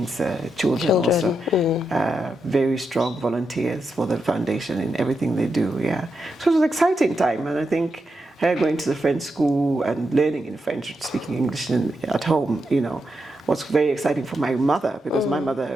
children also. Very strong volunteers for the foundation in everything they do. Yeah, so it was an exciting time, and I think her going to the French school and learning in French, speaking English at home, was very exciting for my mother, because my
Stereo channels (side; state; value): both; normal; correlation 0.85